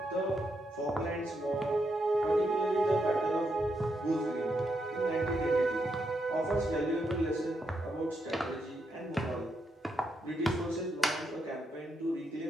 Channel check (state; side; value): normal; both; correlation 0.81